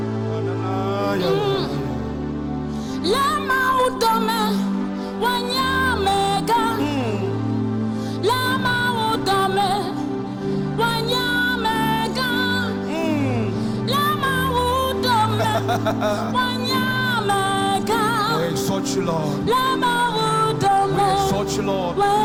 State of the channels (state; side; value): identical; both; correlation 1.00